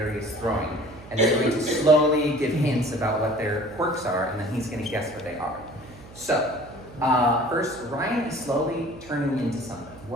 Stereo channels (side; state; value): right; noise; hum, 19 dB below the sound